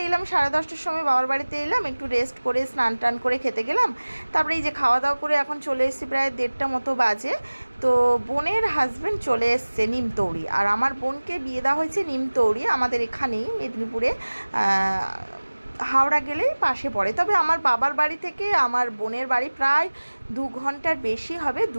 এলাম 10:30টার সময় বাবার বাড়িতে এলাম, একটু রেস্ট করে স্নান টান করে খেতে গেলাম। তারপরে এই যে খাওয়া দাওয়া করে এখন চলে এসেছি, প্রায় 1:30 মতো বাজে। তো বোনের হাজব্যান্ড চলে এসছে নিমতৌড়ি, আর আমার বোনকে বিয়ে দেওয়া হয়েছে নিমতৌড়ি, আমাদের এখানেই মেদিনীপুরে, হাওড়া গেলেই পাশে পড়ে। তবে আমার বাবার বাড়ি থেকে আমার বোনের বাড়ি প্রায় 2 ঘন্টার বেশি হবে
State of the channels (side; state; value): both; inverted; correlation -1.00